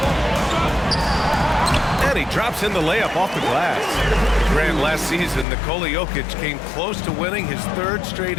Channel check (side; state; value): right; drops out; at 5.5 s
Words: And he drops in the layup off the glass. Grant, last season, Nikola Jokic came close to winning his 3rd straight